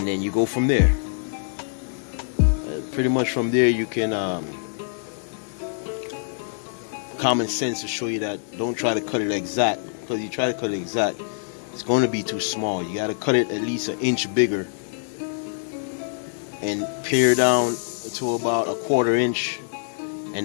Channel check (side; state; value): right; silent; digital silence